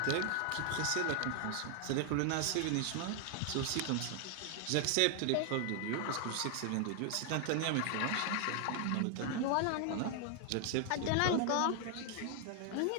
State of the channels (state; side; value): different; both; correlation 0.00